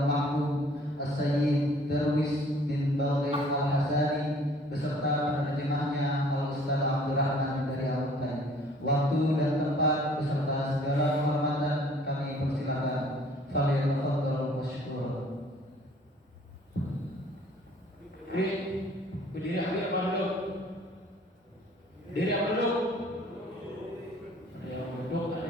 Mahmud As-Sayyid Darwis bin Balqis Al-Hasani beserta penerjemahnya Al-Ustaz Abdurrahman dari Al-Hutan. Waktu dan tempat beserta segala kehormatan kami persilakan. Fadhil masykur. Berdiri ambil apa dulu? Berdiri apa dulu? Ada yang duduk, ada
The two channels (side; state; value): both; normal; correlation 0.55